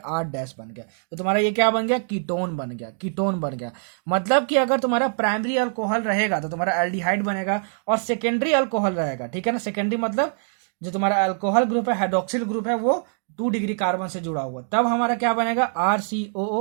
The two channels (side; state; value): left; silent; digital silence